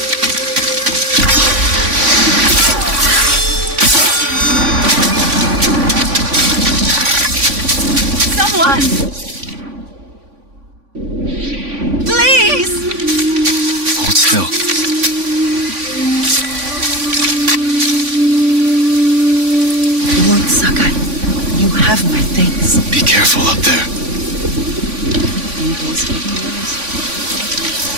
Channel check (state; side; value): late; left; 3.5 ms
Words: fulfill. Lord Sakai, you have my thanks. Be careful up there.